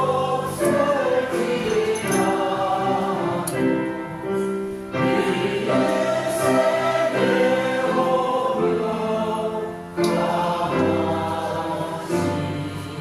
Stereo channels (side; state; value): both; identical; correlation 1.00